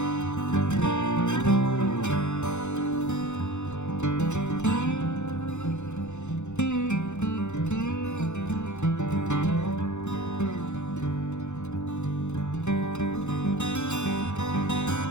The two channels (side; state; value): right; late; 0.83 ms